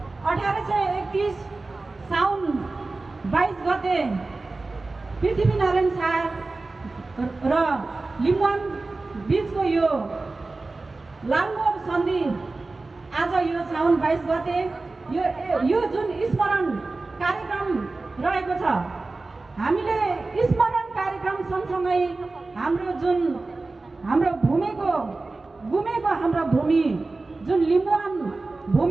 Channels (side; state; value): left; quieter; 3.4 dB